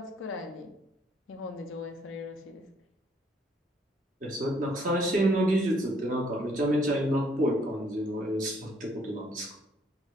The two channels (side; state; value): both; normal; correlation 0.66